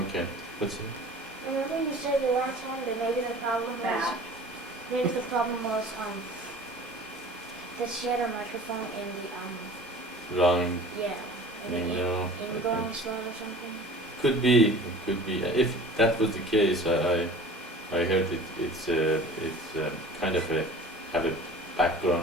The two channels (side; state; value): both; normal; correlation 0.43